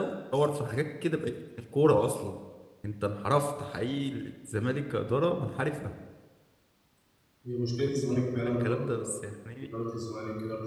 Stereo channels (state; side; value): identical; both; correlation 1.00